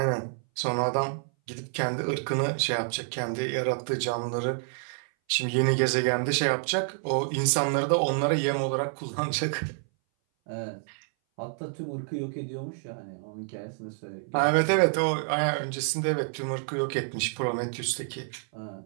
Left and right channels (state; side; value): silent; left; 58 dB below the other